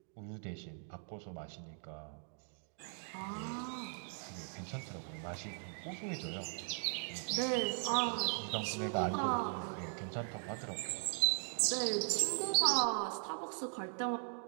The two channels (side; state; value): left; silent; 52 dB below the other